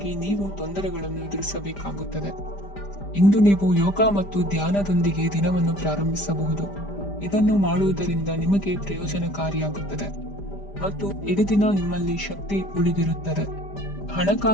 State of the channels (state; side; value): late; right; 5.0 ms